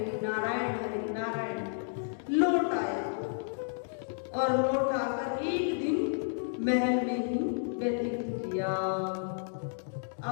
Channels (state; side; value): silent; right; digital silence